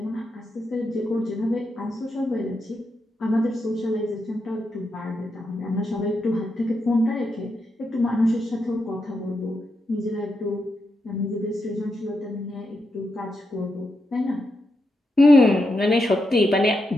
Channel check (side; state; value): both; normal; correlation 0.84